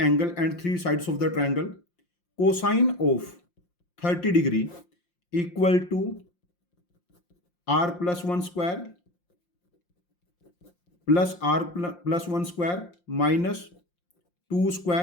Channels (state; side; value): late; right; 5.7 ms